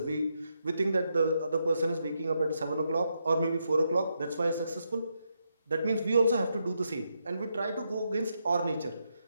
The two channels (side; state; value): both; inverted; correlation -0.81